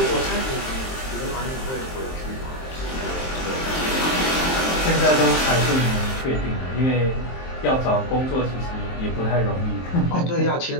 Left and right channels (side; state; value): right; late; 23 ms